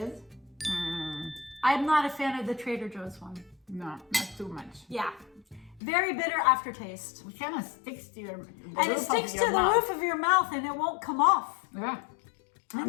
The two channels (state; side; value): drops out; right; at 5.8 s